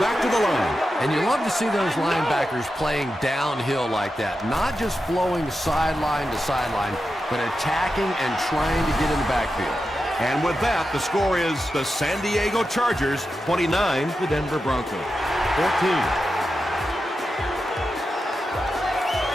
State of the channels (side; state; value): both; normal; correlation 0.90